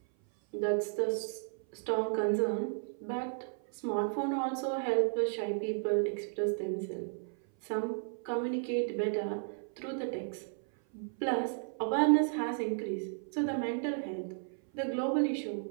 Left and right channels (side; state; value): left; silent; 55 dB below the other